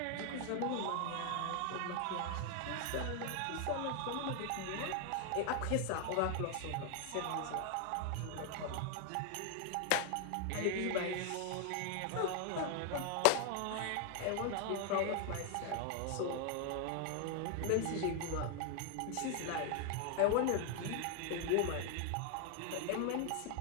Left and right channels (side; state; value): both; different; correlation 0.01